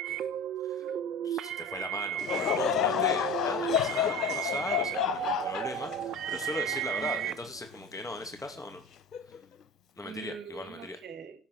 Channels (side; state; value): both; normal; correlation 0.34